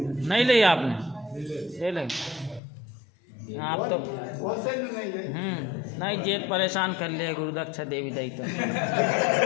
नहीं ली आपने, ले ली आप तो नहीं जेत परेशान कर लिया गुरुदक्षा देवी दाई तो।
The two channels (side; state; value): right; drops out; at 2.6 s